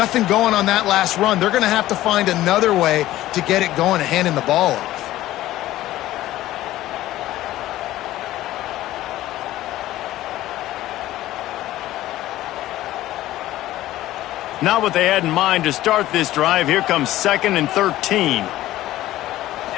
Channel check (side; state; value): right; quieter; 15.1 dB